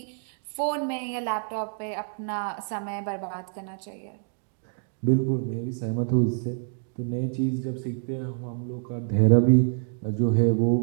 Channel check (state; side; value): silent; left; 58 dB below the other